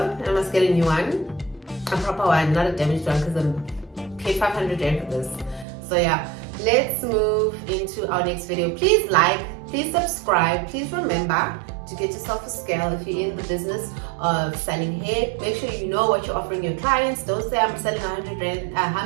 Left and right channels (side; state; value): left; drops out; at 5.7 s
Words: I must get a new one, a proper one, not a damaged one, because I'm paid 500 rand for this. So yeah, let's move into our next video. Please like, please subscribe, please remember to get yourself a scale if you're in the business of selling hair. Make sure you know what you're offering your clients. Don't say I'm selling